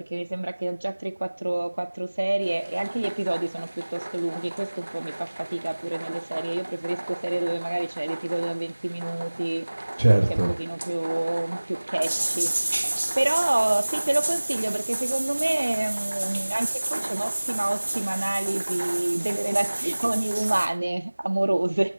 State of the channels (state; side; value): inverted; both; correlation -1.00